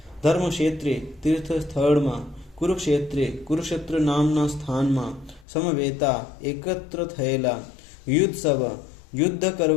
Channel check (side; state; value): right; drops out; at 5.5 s